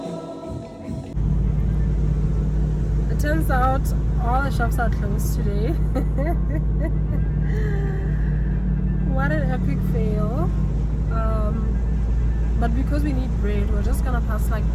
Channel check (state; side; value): identical; both; correlation 1.00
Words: It turns out all the shops are closed today. What an epic fail. But because we need bread, we're just gonna pass like